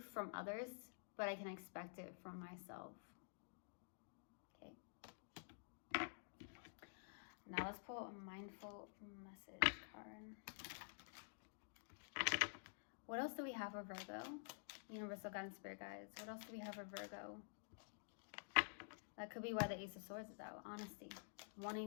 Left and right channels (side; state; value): right; silent; digital silence